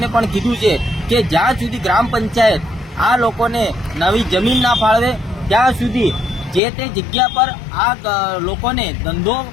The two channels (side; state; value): right; drops out; at 6.6 s